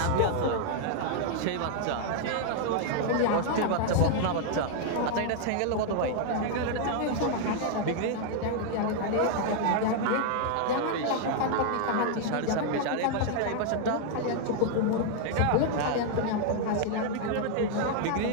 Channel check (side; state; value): both; different; correlation 0.00